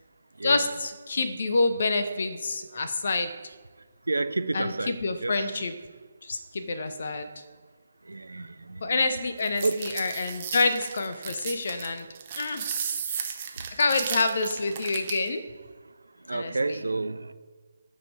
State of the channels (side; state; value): both; inverted; correlation -0.85